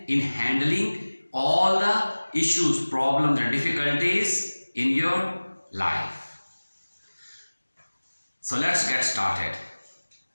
in handling all the issues, problems and difficulties in your life. So let's get started.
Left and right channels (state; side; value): inverted; both; correlation -1.00